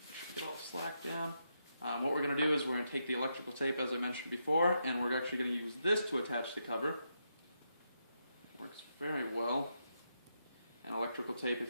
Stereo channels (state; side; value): inverted; both; correlation -0.82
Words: Should get all slack down. What we're going to do is we're going to take the electrical tape, as I mentioned before, and we're actually going to use this to attach the cover. Works very well. And electrical tape,